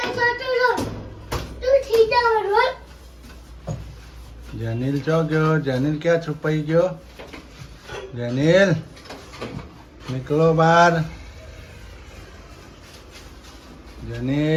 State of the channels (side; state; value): both; identical; correlation 1.00